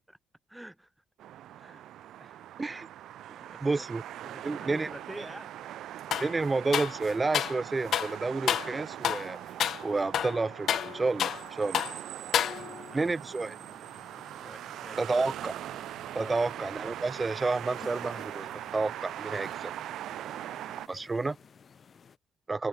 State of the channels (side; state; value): both; normal; correlation 0.82